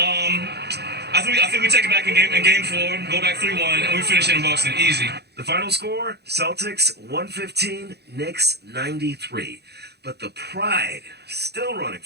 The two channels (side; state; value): left; late; 0.48 ms